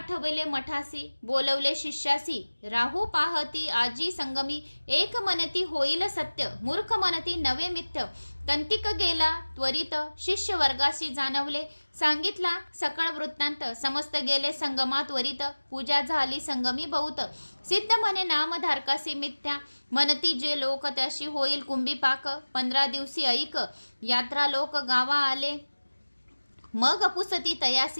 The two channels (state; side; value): inverted; both; correlation -1.00